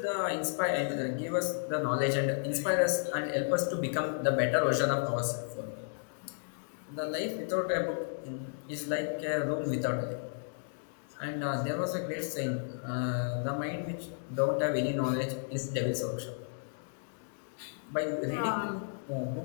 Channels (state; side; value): silent; right; digital silence